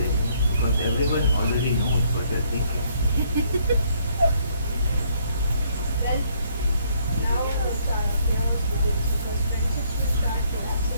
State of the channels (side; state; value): both; inverted; correlation -0.68